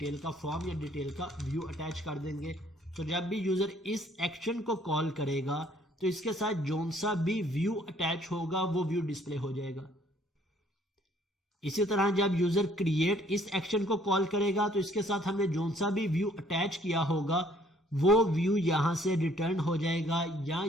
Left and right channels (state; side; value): normal; both; correlation 0.61